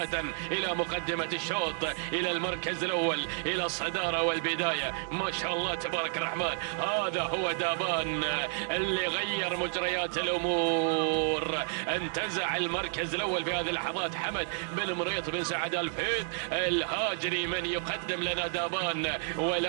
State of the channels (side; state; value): left; silent; digital silence